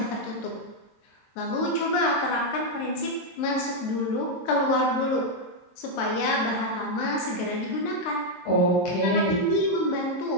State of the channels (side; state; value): right; late; 23 ms